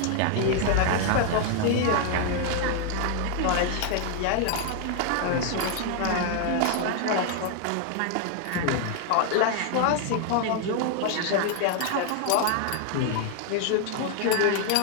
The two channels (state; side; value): different; both; correlation 0.00